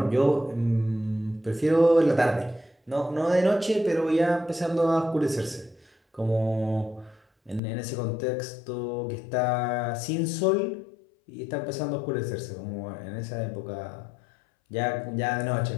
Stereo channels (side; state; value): right; drops out; at 7.6 s